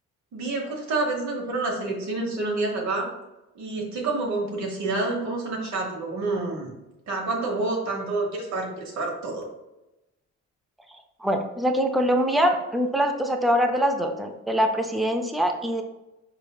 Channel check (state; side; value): normal; both; correlation 0.48